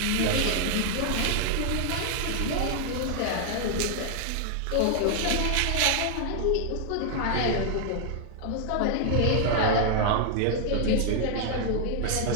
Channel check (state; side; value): different; both; correlation 0.00